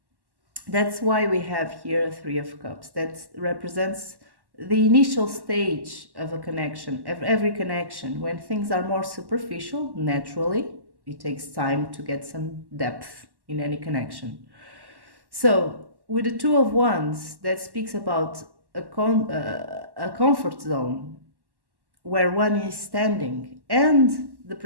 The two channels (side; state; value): left; late; 1.1 ms